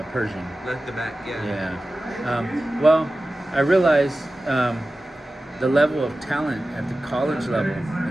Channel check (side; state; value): both; normal; correlation 0.95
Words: Pershing. Like the back, yeah. Yeah. Well, I realized the level of talent at the college level.